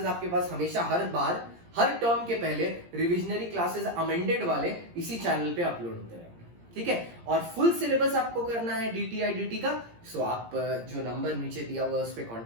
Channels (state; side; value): late; left; 17 ms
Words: आपके पास हमेशा हर term के पहले revisionary classes amended वाले इसी चैनल पे अपलोड होते रहेंगे, ठीक है। और फुल सिलेबस आपको करना है DTI का, सो आप जो नंबर नीचे दिया हुआ है उस पर